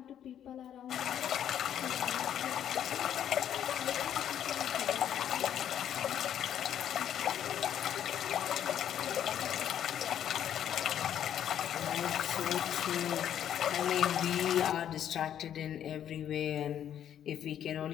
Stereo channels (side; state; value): right; quieter; 10.0 dB